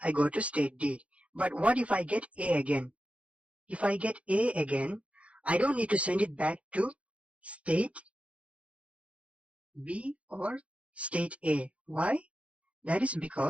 I go to state D. But what if I get A again? If I get A again, I don't need to send it back to state B or state A. Why? That is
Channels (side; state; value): left; late; 0.063 ms